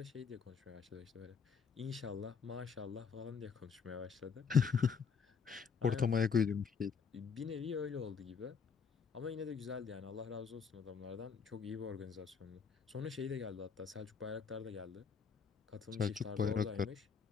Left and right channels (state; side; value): quieter; right; 5.9 dB